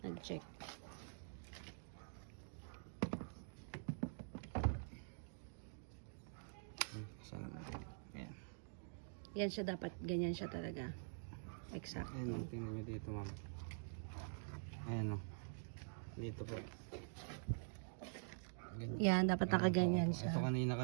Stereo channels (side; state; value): left; silent; digital silence